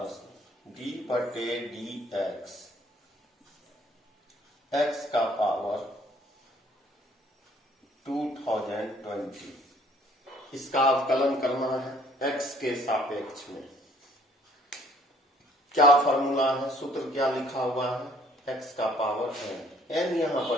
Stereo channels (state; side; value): normal; both; correlation 0.59